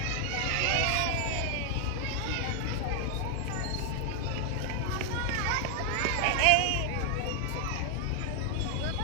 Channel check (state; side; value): different; both; correlation 0.00